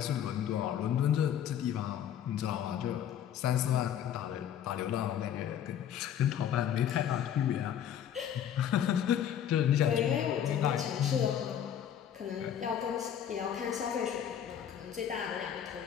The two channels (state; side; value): quieter; right; 9.6 dB